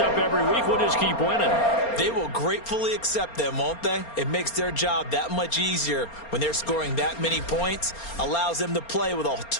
up every week. We'll just keep winning. They will gratefully accept them, won't they? It makes their job that much easier when they're scoring that many points. Allows them to play with a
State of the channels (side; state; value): right; late; 4.3 ms